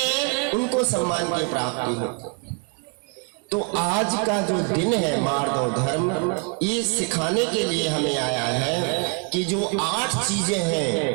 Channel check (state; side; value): quieter; left; 36.7 dB